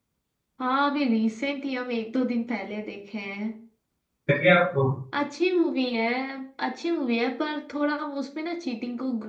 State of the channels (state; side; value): identical; both; correlation 1.00